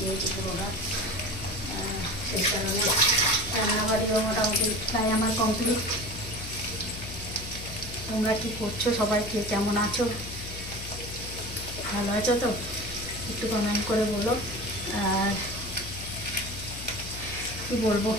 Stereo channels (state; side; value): noise; left; hum, 11 dB below the sound